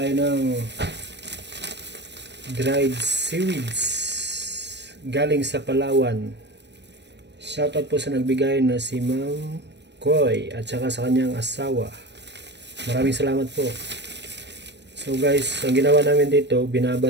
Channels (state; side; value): late; left; 0.50 ms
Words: ng dried seaweeds galing sa Palawan. Shoutout po sa nagbigay na si Ma'am Koy at saka sa kanyang asawa. Maraming salamat po. So guys, ang ginawa namin dito,